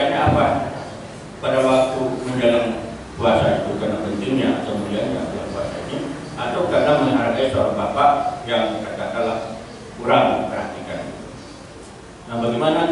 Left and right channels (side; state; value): both; identical; correlation 1.00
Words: apa? Pada waktu menjelang puasa itu karena pentingnya atau mulianya puasa ini, atau karena menghargai seorang bapak yang katakanlah kurang perhatikan. Nah, bagaimana